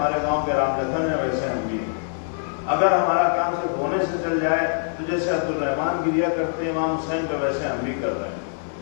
گاؤں کے رام لکھن ہے ویسے ہم بھی، اگر ہمارا کام صرف رونے سے چل جائے تو جیسے عبد الرحمان گریہ کرتے ہیں امام حسین پہ ویسے ہم بھی کر رہے ہیں،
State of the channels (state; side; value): silent; right; digital silence